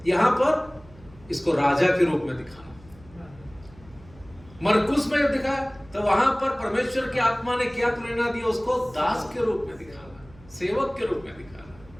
यहां पर इसको राजा के रूप में दिखाना। मरकुस में जब दिखा, तो वहां पर परमेश्वर की आत्मा ने क्या प्रेरणा दिया? उसको दास के रूप में दिखाना, सेवक के रूप में दिखाना।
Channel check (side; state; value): right; noise; hum, 24 dB below the sound